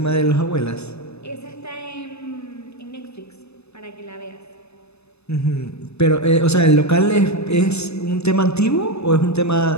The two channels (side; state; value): right; late; 0.80 ms